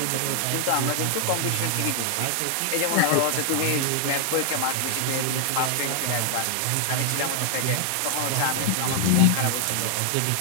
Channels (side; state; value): both; different; correlation 0.00